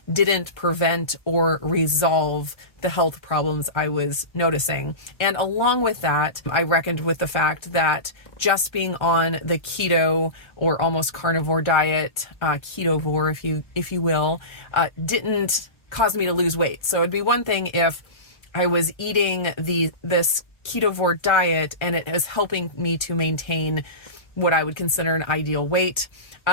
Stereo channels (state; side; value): late; right; 1.3 ms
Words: didn't prevent or resolve the health problems I was noticing. And along with that, I reckoned with the fact that just being on the keto or almost carnivore diet, ketovore, if you will, didn't cause me to lose weight. So it'd be one thing if I was eating this ketovore diet and it is helping me to maintain what I would consider an ideal weight.